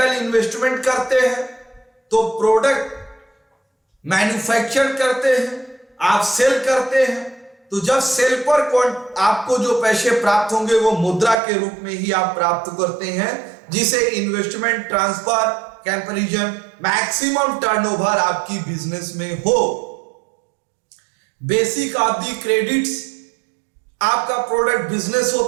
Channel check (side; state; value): left; drops out; at 11.4 s